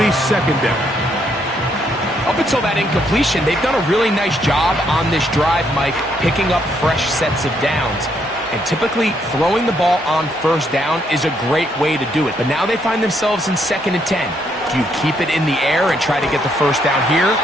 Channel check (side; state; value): both; normal; correlation 0.73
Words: 2nd down. Up until that incompletion, they've done a really nice job on this drive, Mike, picking up fresh sets of downs. And typically, throwing the ball on 1st down is a great way to do it. But now they find themselves in 2nd and 10. Do you keep it in the air and try to get the 1st down here?